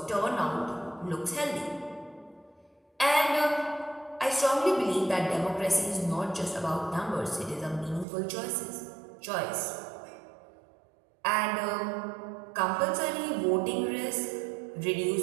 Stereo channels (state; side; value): drops out; left; at 8.1 s